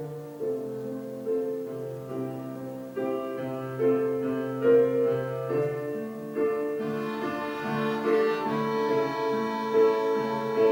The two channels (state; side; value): identical; both; correlation 1.00